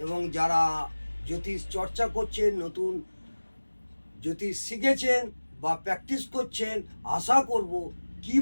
এবং যারা জ্যোতিষ চর্চা করছেন, নতুন জ্যোতিষ শিখেছেন বা প্র্যাকটিস করছেন, আশা করব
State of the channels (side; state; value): both; inverted; correlation -1.00